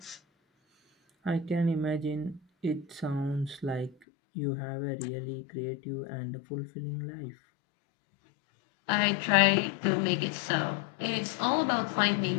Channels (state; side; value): drops out; right; at 4.0 s